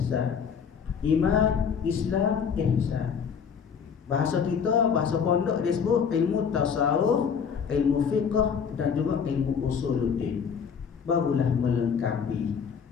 Iman, Islam, ihsan. Bahasa kita, bahasa pondok dia sebut ilmu tasawuf, ilmu fiqh dan juga ilmu usuluddin. Barulah melengkapi.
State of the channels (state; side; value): quieter; right; 6.8 dB